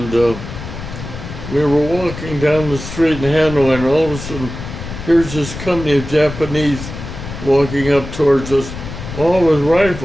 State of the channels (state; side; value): noise; left; rumble, 10 dB below the sound